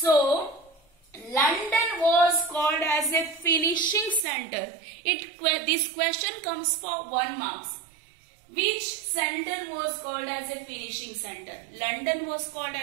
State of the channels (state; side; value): drops out; left; at 4.2 s